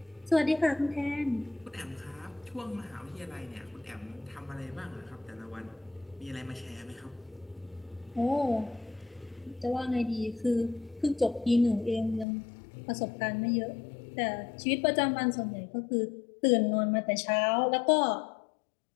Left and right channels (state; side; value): drops out; right; at 12.2 s